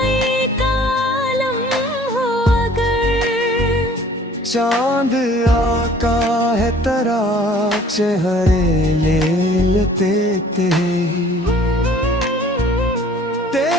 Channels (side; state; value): both; normal; correlation 0.53